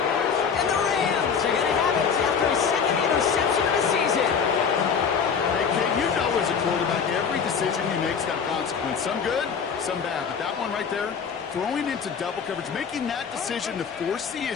And the Rams are going to have it after his second interception of the season. Hey, Kate, you know as a quarterback, every decision he makes got consequence. Some good, some bad. But that one right there, throwing into double coverage, making that decision to force the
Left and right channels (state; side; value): quieter; right; 6.4 dB